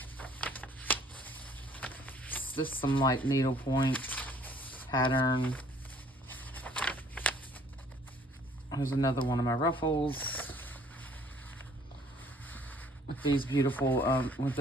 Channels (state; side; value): normal; both; correlation 0.57